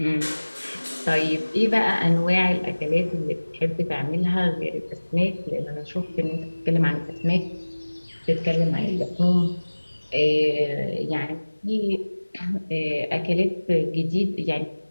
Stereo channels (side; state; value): both; inverted; correlation -1.00